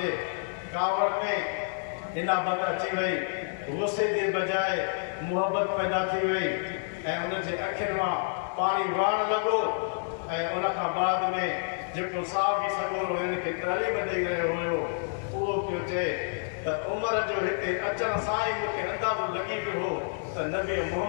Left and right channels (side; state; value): right; silent; digital silence